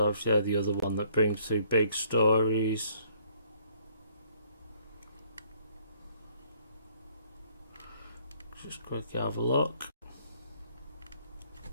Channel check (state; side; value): inverted; both; correlation -0.63